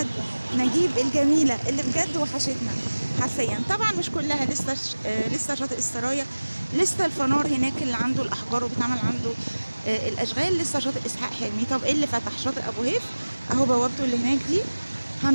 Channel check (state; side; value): inverted; both; correlation -1.00